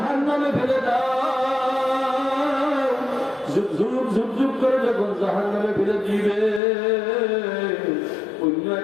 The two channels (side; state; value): right; drops out; at 6.6 s